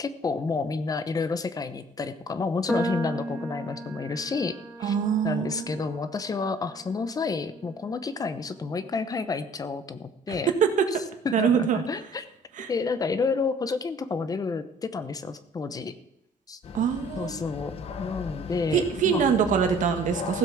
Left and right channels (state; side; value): normal; both; correlation 0.54